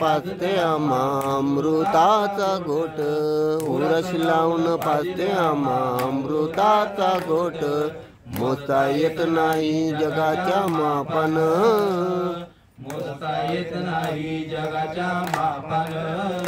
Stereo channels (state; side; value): identical; both; correlation 1.00